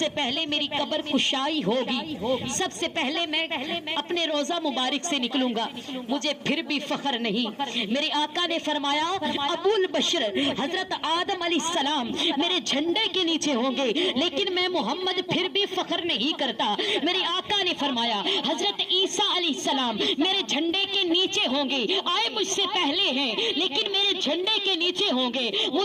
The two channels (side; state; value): both; identical; correlation 1.00